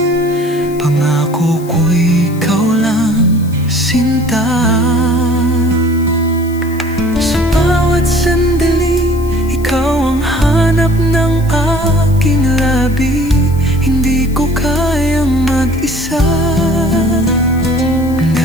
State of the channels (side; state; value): left; noise; hiss, 21 dB below the sound